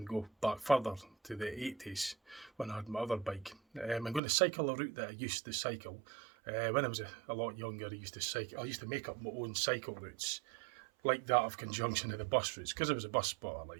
go back further to the 80s when I had my other bike. I'm going to cycle a route that I used to cycle. When I was a lot younger, I used to make up my own cycle routes, like that of conjunction of the bus routes, because I was a bus spotter,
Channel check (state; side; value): drops out; left; at 4.2 s